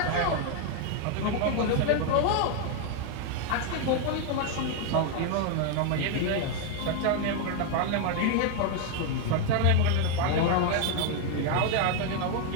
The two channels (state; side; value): different; both; correlation 0.01